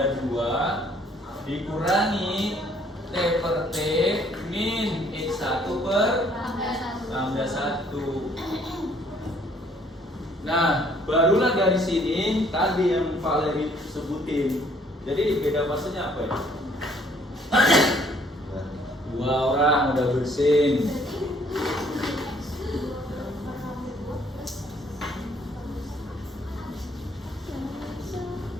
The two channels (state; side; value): normal; both; correlation 0.62